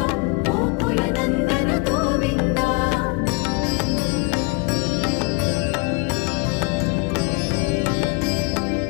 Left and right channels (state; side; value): quieter; right; 28.5 dB